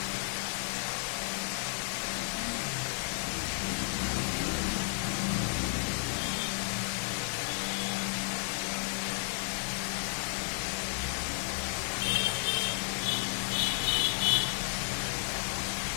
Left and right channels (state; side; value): silent; right; 56 dB below the other